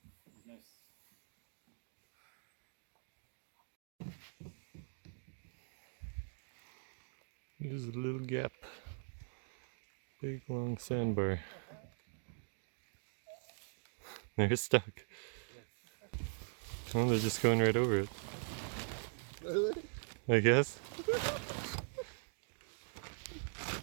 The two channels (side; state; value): left; silent; digital silence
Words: There's a little gap. Big long sandbar. They're stuck. Oh, they're just going right over it. I guess.